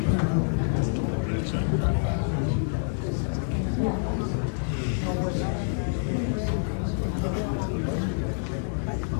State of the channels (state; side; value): silent; right; digital silence